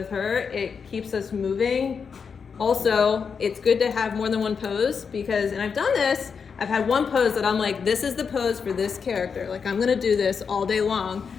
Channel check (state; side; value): quieter; right; 6.0 dB